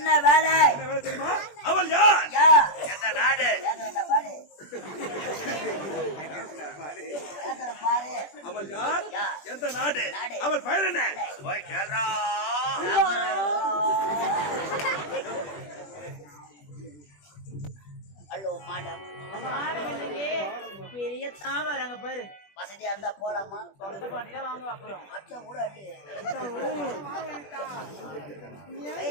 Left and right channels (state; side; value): late; right; 21 ms